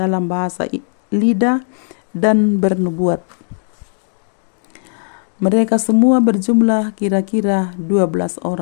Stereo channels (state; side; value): silent; right; digital silence